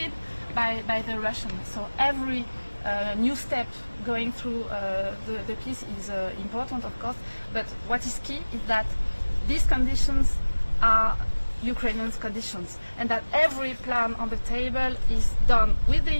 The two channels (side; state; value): both; inverted; correlation -1.00